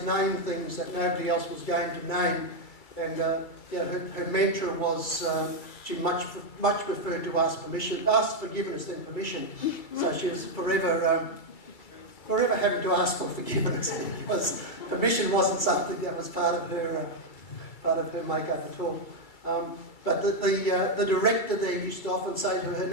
name things that nobody else was going to name. And her mantra was she much preferred to ask forgiveness than permission. So she was forever having to ask for forgiveness because permission wasn't something that was part of her makeup at all. But the director there used to often say to her,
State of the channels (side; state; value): right; late; 2.3 ms